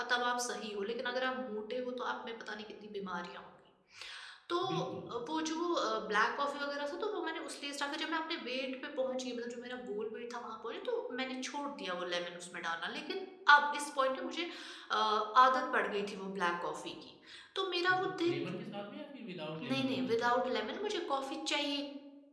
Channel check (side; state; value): both; identical; correlation 1.00